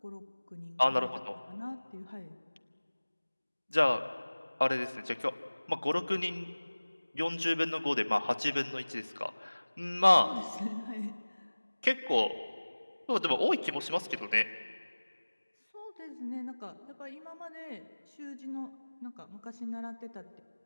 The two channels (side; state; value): both; inverted; correlation -1.00